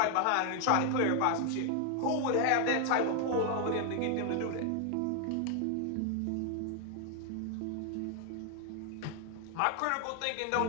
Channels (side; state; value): both; different; correlation 0.00